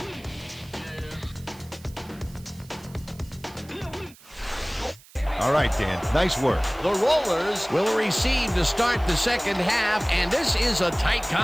All right, Dan, nice work. The Rollers will receive to start the second half, and this is a tight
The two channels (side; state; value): right; noise; hiss, 24 dB below the sound